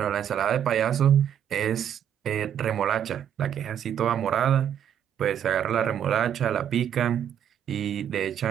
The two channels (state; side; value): quieter; left; 9.3 dB